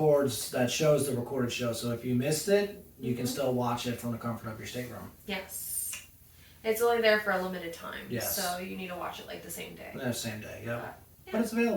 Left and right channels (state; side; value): identical; both; correlation 1.00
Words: shows the recorded show. So if you missed it, you can still watch it from the comfort of your stateroom. Yes. It's only there for a limited time. Yes. So you need to watch it like the same day. The same day, yep. Yeah. But it's